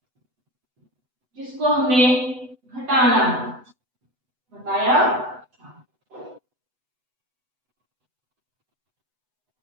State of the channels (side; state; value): left; late; 8.0 ms